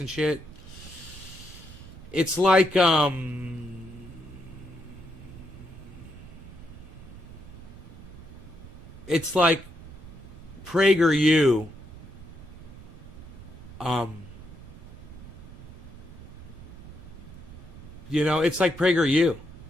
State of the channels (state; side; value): noise; right; rumble, 16 dB below the sound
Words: shit. It's like it's like PragerU. It's like PragerU,